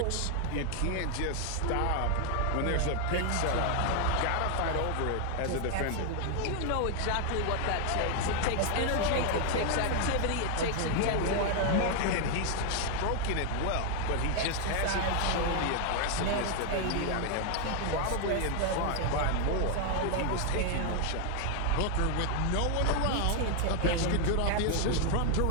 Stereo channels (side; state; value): both; different; correlation 0.01